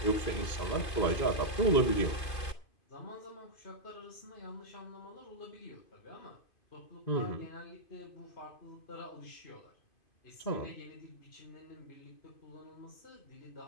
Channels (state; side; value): late; right; 2.5 ms